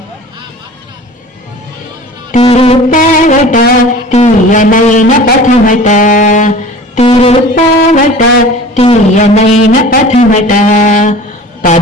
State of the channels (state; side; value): normal; both; correlation 0.41